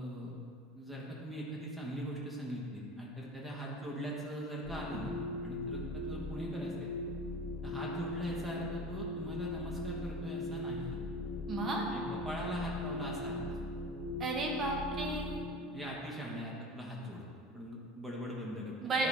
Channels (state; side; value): normal; both; correlation 0.36